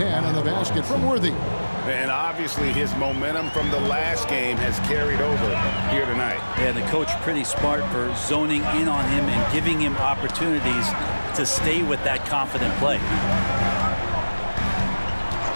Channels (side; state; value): both; inverted; correlation -1.00